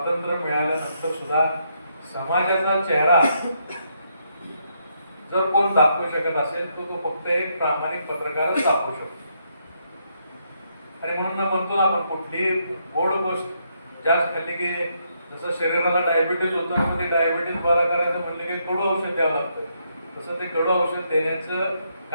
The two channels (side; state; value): both; inverted; correlation -0.76